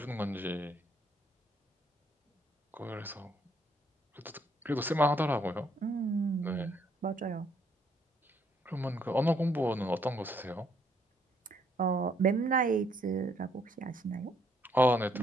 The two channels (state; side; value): normal; both; correlation 0.70